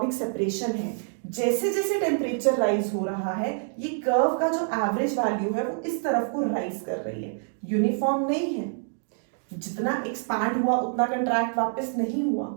सेपरेशन है, जैसे जैसे टेम्परेचर राइज हो रहा है, ये कर्व का जो एवरेज वैल्यू है वो इस तरफ को राइज कर रही है, यूनिफॉर्म नहीं है। जितना एक्सपैंड हुआ उतना कंट्रैक्ट वापस नहीं हुआ।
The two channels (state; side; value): silent; left; 60 dB below the other